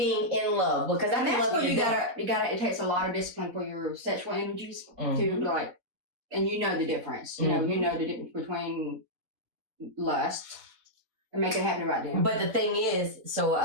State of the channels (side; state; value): left; late; 4.0 ms